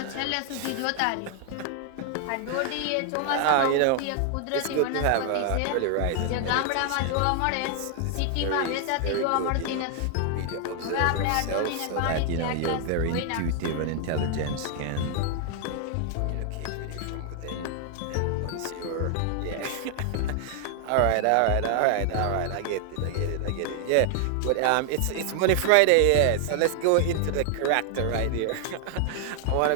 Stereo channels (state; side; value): different; both; correlation 0.00